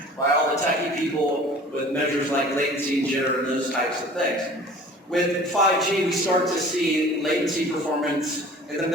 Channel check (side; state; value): both; normal; correlation 0.46